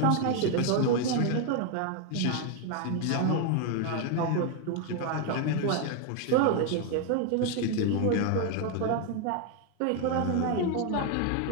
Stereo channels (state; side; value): different; both; correlation 0.01